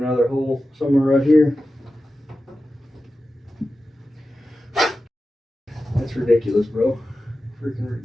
hole somewhere right here. That's ridiculous, bro.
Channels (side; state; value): both; normal; correlation 0.93